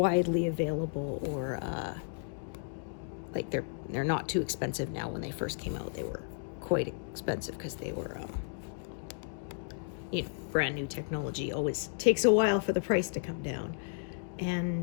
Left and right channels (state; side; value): silent; right; digital silence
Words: available, or like they're not too expensive now. When they first came out, they were quite expensive because they were you know, brand new technology. Always takes a while for the price to come down.